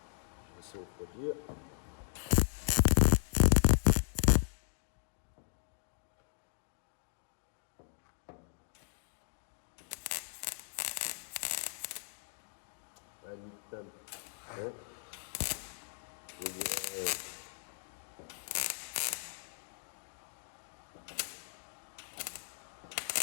Je vais essayer de refroidir. Ah, nique-tam. Hein? Je vais dire,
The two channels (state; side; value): silent; right; digital silence